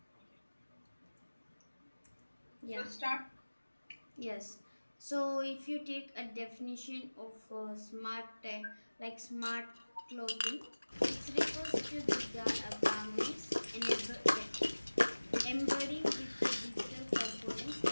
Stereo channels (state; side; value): inverted; both; correlation -1.00